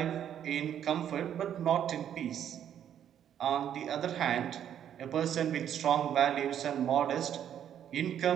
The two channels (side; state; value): left; quieter; 9.8 dB